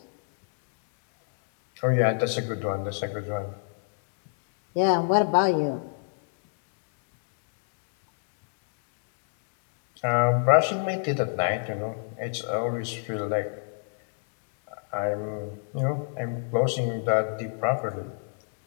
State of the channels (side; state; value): right; silent; digital silence